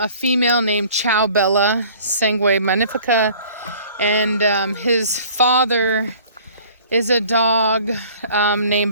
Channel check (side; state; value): both; inverted; correlation -0.51